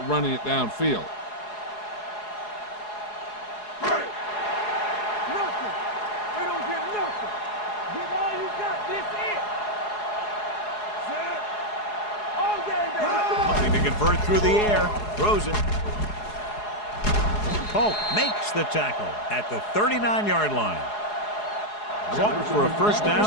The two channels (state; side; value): late; right; 4.8 ms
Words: running it downfield. Nothing. They don't get nothing. Give all you got. This it. Set. All game, baby. Looking to convert through the air. Throws it. Polk makes the tackle at the 39-yard line. Caught for a first